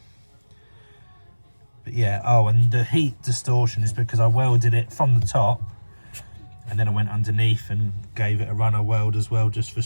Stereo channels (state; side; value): inverted; both; correlation -1.00